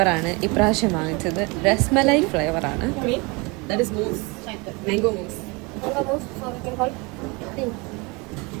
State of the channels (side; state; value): left; quieter; 27.5 dB